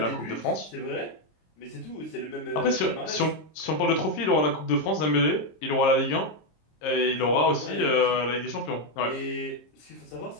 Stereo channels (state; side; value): late; right; 26 ms